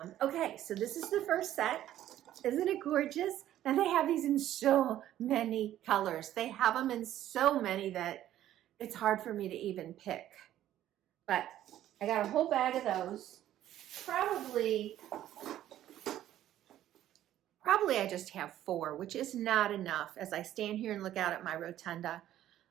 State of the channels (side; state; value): left; quieter; 12.6 dB